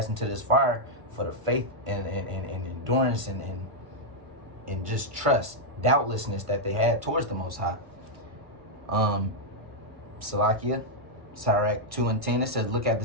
into this fire for the faith and endurance and just trust, doubtlessness that they had towards the Most High. Salakia, Sirach 2:10, it says, look at the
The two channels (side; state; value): left; late; 1.5 ms